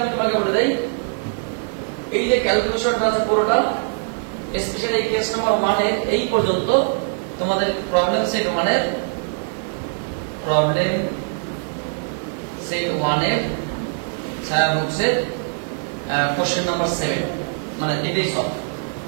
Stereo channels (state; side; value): silent; left; digital silence